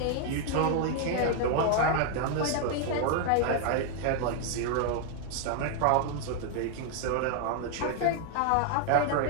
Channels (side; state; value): both; different; correlation 0.00